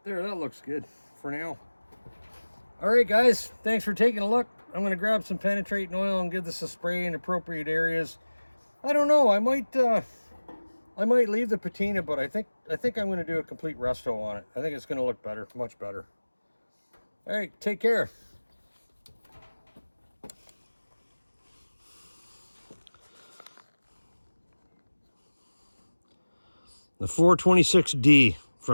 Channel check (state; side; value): inverted; both; correlation -1.00